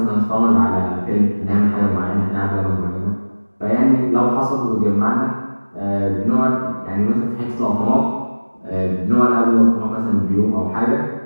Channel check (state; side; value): inverted; both; correlation -1.00